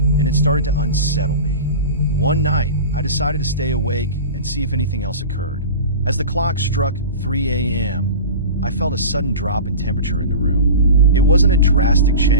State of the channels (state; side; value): inverted; both; correlation -0.32